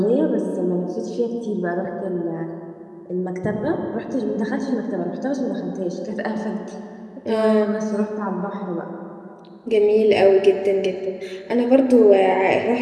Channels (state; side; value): identical; both; correlation 1.00